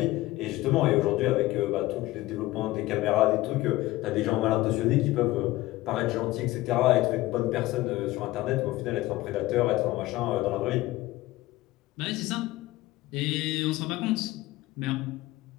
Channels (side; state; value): right; quieter; 18.0 dB